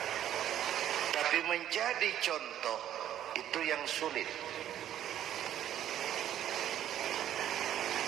tapi menjadi contoh itu yang sulit.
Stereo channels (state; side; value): quieter; left; 11.3 dB